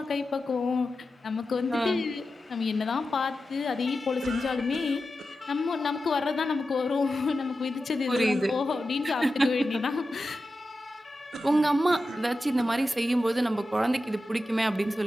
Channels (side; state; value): both; normal; correlation 0.92